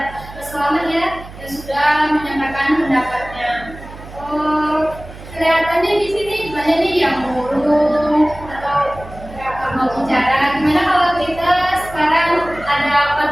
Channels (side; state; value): right; noise; hum, 16 dB below the sound